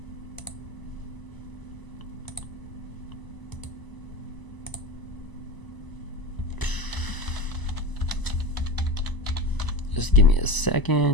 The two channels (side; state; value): right; late; 1.0 ms